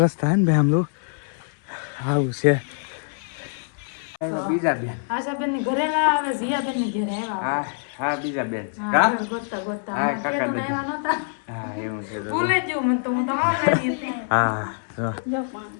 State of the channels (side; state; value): right; silent; 62 dB below the other